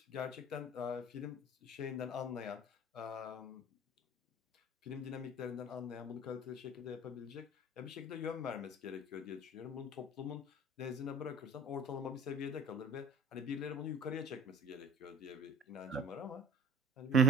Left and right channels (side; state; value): both; normal; correlation 0.44